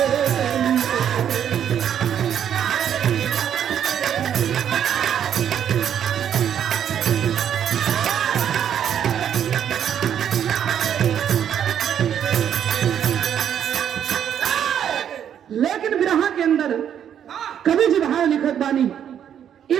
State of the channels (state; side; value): quieter; left; 9.3 dB